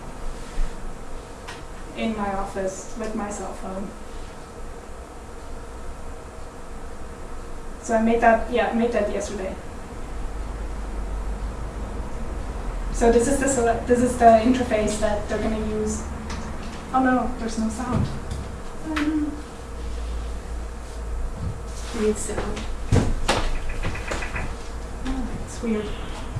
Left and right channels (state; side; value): identical; both; correlation 1.00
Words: in my office with my cell phone. So I made that yesterday. So this is the interface that they're going to use. Oh no, there's no sound. Need sound. Oh, it's weird.